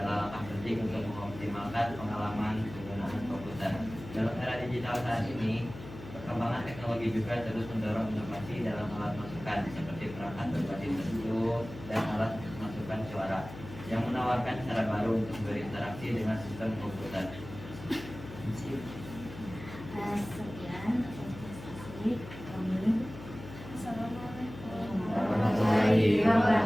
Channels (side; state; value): left; noise; hum, 13 dB below the sound